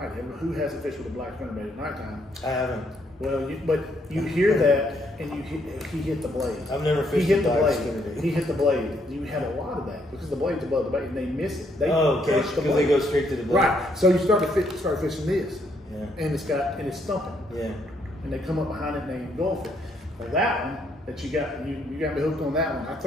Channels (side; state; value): both; normal; correlation 0.72